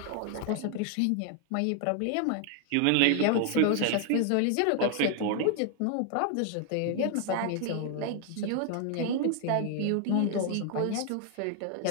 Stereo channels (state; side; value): different; both; correlation 0.00